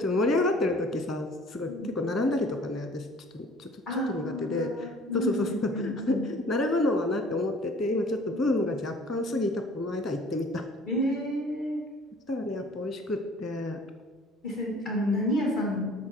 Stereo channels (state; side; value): normal; both; correlation 0.51